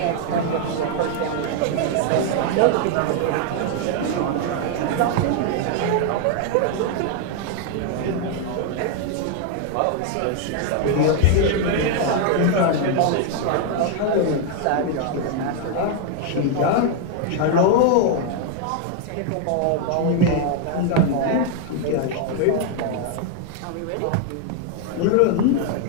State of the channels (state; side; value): different; both; correlation 0.00